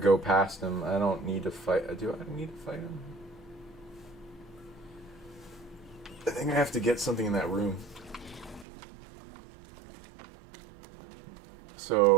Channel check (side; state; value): left; drops out; at 8.7 s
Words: past him. I don't need to fight. Do I need to fight him? I think I have to get something in that room.